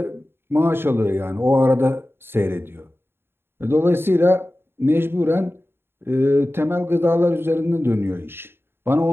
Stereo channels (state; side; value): late; left; 0.11 ms